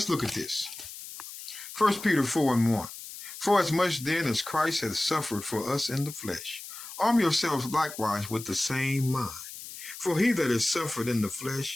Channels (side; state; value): left; noise; hiss, 12 dB below the sound